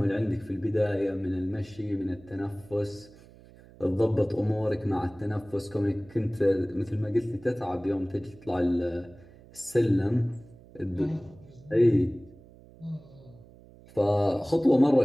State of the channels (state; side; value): noise; right; hum, 23 dB below the sound